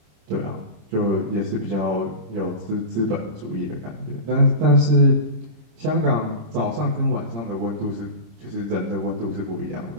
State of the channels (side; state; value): left; late; 26 ms